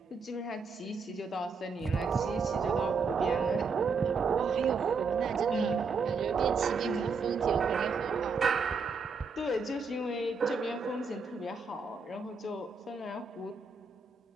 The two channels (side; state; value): left; quieter; 4.8 dB